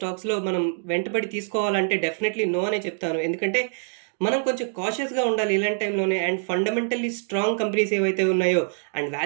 మనం వెంటబడి తీసుకోవాలంటే డెఫినెట్లీ నో అనే చెప్తాను. ఎందుకంటే మనం కొంచెం కాషియస్గా ఉండాలి ఇలాంటి టైంలోనే. అండ్ ఫండమెంటల్లీ స్ట్రాంగ్ కంపెనీస్ ఏవైతే ఉన్నాయో అండ్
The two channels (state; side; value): silent; left; digital silence